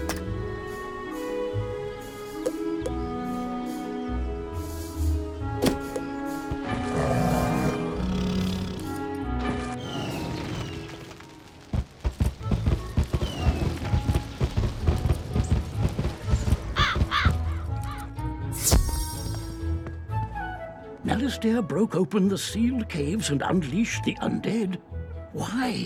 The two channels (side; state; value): both; identical; correlation 1.00